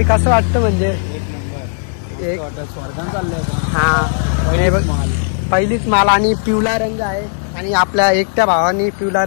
कसं वाटतं? म्हणजे एक स्वर्गात चाललंय. हा पहिलीच माल. आणि पिवळा रंग आहे. आणि आपल्या एकट्या भावानी पिवळा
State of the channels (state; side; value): silent; right; digital silence